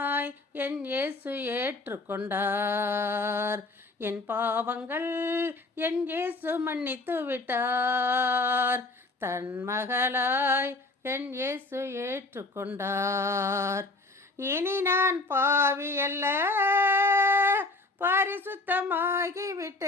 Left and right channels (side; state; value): right; quieter; 3.2 dB